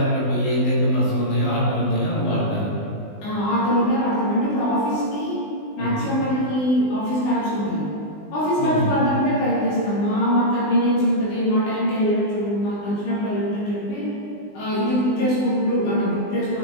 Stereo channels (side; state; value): right; late; 20 ms